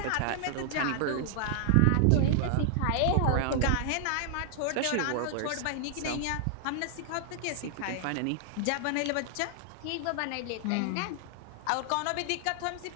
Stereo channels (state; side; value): different; both; correlation 0.00